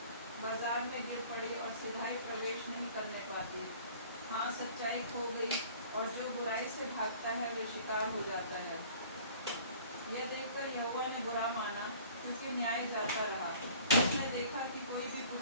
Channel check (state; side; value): inverted; both; correlation -0.49